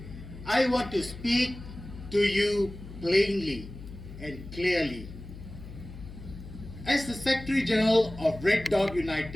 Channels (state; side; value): noise; left; hum, 14 dB below the sound